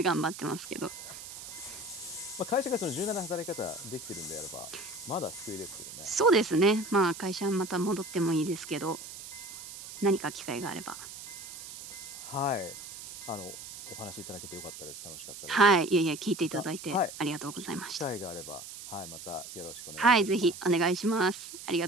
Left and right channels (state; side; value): noise; right; hiss, 12 dB below the sound